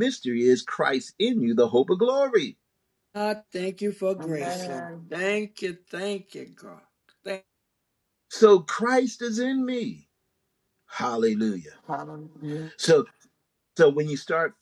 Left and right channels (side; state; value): both; identical; correlation 1.00